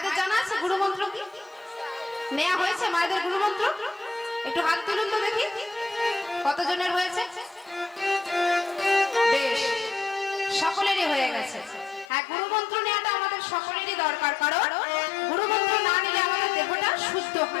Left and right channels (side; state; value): right; drops out; at 12.1 s